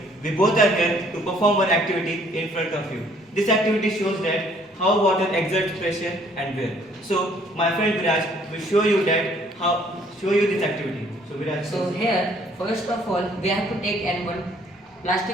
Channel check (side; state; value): both; normal; correlation 0.61